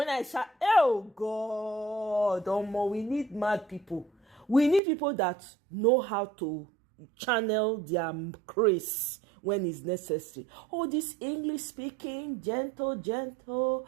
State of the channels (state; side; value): drops out; left; at 4.8 s